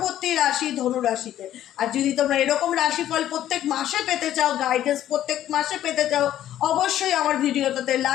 রাশি ধনু রাশিতে। আর যদি তোমরা এরকম রাশিফল প্রত্যেক মাসে পেতে চাও, গাইডেন্স প্রত্যেক মাসে পেতে চাও, অবশ্যই আমার ভিডিওটাতে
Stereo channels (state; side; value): quieter; right; 12.1 dB